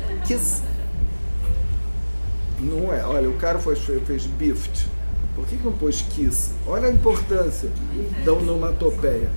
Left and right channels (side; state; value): both; inverted; correlation -1.00